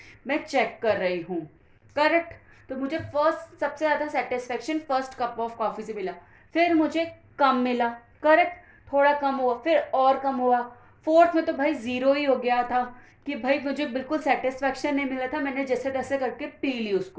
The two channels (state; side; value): identical; both; correlation 1.00